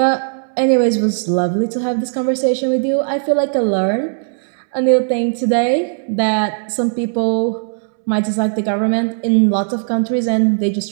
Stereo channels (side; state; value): left; silent; 68 dB below the other